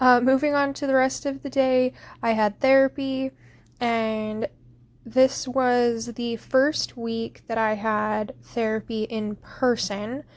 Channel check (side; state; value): both; identical; correlation 1.00